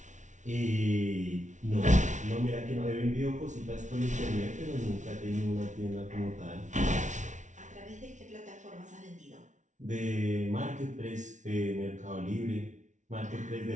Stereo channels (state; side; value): late; left; 0.36 ms